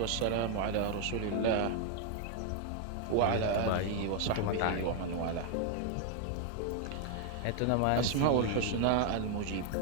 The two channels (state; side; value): different; both; correlation 0.00